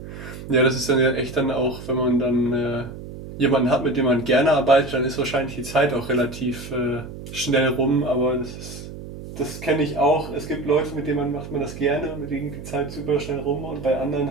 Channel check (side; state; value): right; noise; hum, 12 dB below the sound